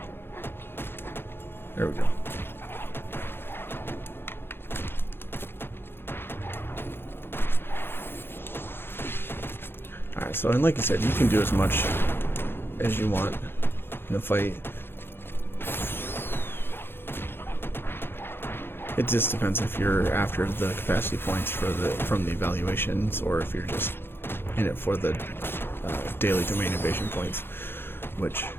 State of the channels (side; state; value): right; late; 0.11 ms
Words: There we go. Alright, so and like you said, you can do as much as you want in the fight. It just depends if you're after the capacity points for from the evaluations, or if you're just in it for the daily domain invasion points, which